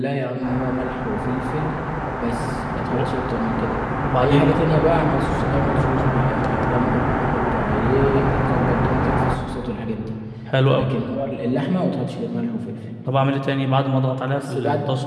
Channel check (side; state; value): both; identical; correlation 1.00